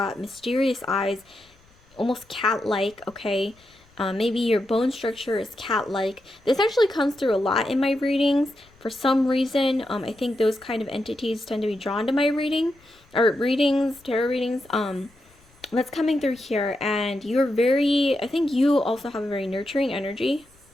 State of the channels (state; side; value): noise; left; rumble, 30 dB below the sound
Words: mysterious eyes, almost cat-like, okay? Maybe your bone structure is cat-like. This actually comes through a lot in my readings. For some reason, I think those kind of entities tend to be drawn to my readings, tarot readings. That's coming through here, and I think you also have a very nurturing energy.